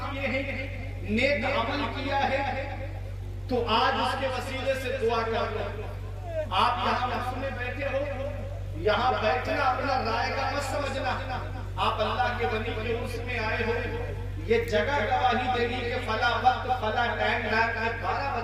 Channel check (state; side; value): identical; both; correlation 1.00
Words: کیے ہیں، نیک عمل کیا ہے، تو آج اس کے وسیلے سے دعا کر لو۔ آپ یہاں محفل میں بیٹھے ہو، یہاں بیٹھنا اپنا رائے گا مت سمجھنا۔ آپ اللہ کے ولی کے عرس میں آئے ہو، یہ جگہ گواہی دے گی کہ فلاں وقت فلاں ٹائم رات کے 12